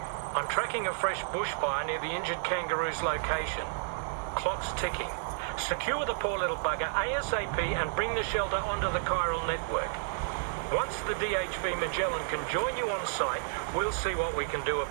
I'm tracking a fresh bushfire near the injured kangaroo's location. Clock's ticking. Secure the poor little bugger ASAP and bring the shelter onto the Chiral Network. Once the DHV Magellan can join you on site, we'll see what we can do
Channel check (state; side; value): silent; left; digital silence